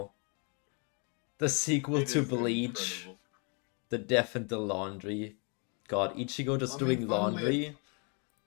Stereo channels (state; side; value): quieter; right; 36.1 dB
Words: The sequel It to is Bleach. incredible. The Death and the Laundry. God, Ichigo just I mean, doing laundry.